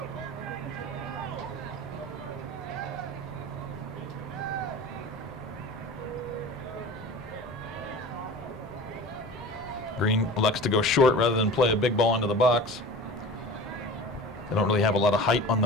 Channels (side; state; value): left; noise; rumble, 23 dB below the sound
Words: Green elects to go short rather than play a big ball into the box. They don't really have a lot of height on